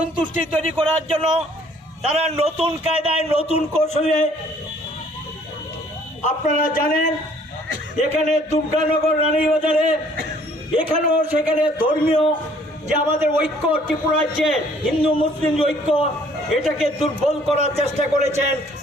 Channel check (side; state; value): both; normal; correlation 0.59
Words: করার জন্য তারা নতুন কায়দায় নতুন কৌশলে, আপনারা জানেন এখানে দুর্গানগর রানীবাজারে এখানেও সেখানে ধর্মীয় যে আমাদের ঐক্য, ত্রিপুরা রাজ্যে হিন্দু মুসলিম ঐক্য, এটাকে দুর্বল করার চেষ্টা করেছেন,